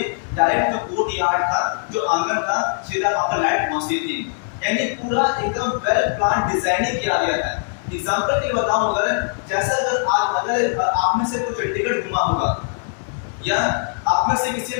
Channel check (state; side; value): silent; right; digital silence